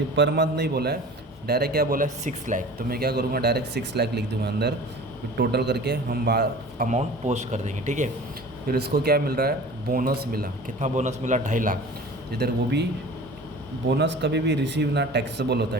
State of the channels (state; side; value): normal; both; correlation 0.41